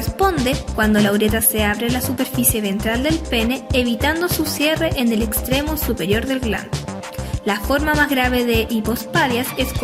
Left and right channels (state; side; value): identical; both; correlation 1.00